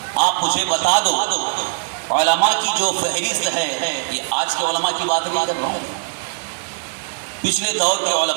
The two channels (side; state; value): left; silent; 58 dB below the other